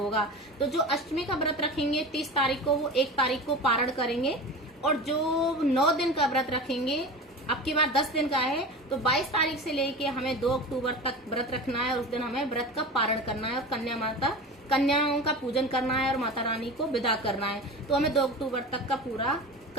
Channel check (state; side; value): normal; both; correlation 0.31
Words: तो जो अष्टमी का व्रत रखेंगे 30 तारीख को, वो 1 तारीख को पारण करेंगे, और जो 9 दिन का व्रत रखेंगे, अब की बार 10 दिन का है, तो 22 तारीख से लेके हमें 2 अक्टूबर तक व्रत रखना है, और उस दिन हमें व्रत का पारण करना है और कन्याओं का पूजन करना है और माता रानी को विदा करना है। तो हमें 2 अक्टूबर तक का पूरा